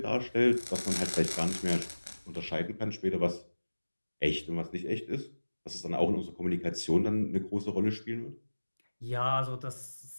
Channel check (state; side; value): inverted; both; correlation -1.00